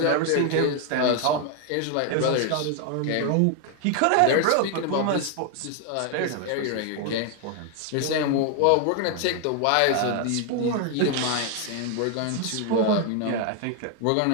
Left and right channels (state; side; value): different; both; correlation 0.01